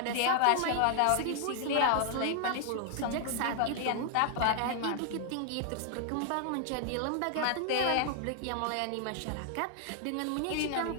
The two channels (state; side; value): different; both; correlation 0.00